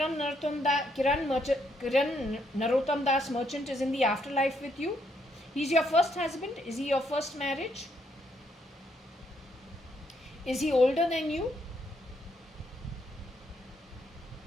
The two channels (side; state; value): both; normal; correlation 0.74